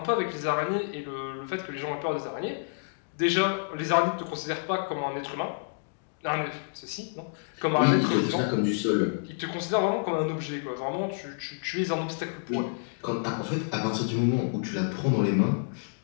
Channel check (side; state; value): right; silent; digital silence